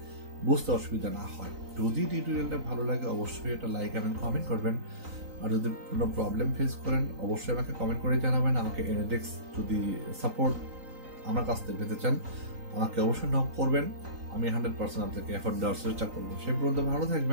বুঝতে অসুবিধা না হয়। যদি টিউটোরিয়ালটা ভালো লাগে অবশ্যই এটা লাইক এবং কমেন্ট করবেন। আর যদি কোনো প্রবলেম ফেস করেন অবশ্যই আমাকে কমেন্ট করে জানাবেন। আমাকে এনএডেক্স যদি সাপোর্ট আমার কাছ থেকে পেতে চান আমাকে অবশ্যই নক করবেন। আমি 100% আপনাকে এফোর্ট দেওয়ার চেষ্টা করবো। সেই পর্যন্ত ভালো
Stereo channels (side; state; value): left; late; 3.9 ms